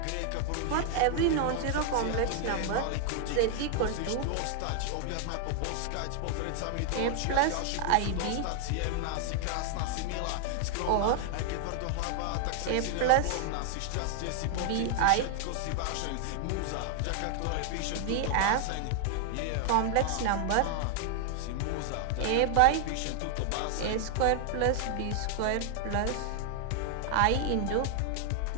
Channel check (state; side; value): different; both; correlation 0.00